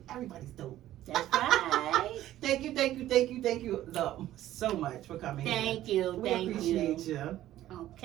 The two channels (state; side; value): quieter; left; 13.6 dB